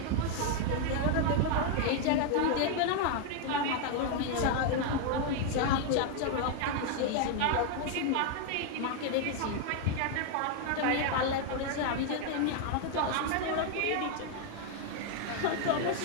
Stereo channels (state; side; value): different; both; correlation 0.00